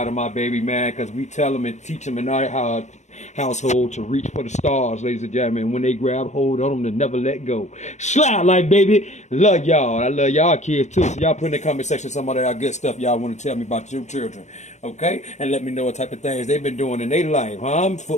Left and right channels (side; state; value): right; late; 0.34 ms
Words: of my baby, man, because we tell them and teach them and know household to reach for the stars, ladies and gentlemen. When they grab hold of them, to never let go. Slablyfe, baby. Love y'all. I love y'all kids too. So y'all put in the comment section some of that good stuff y'all want to tell me about your children. Okay? And let me know what type of things they've been doing in their life. Huh?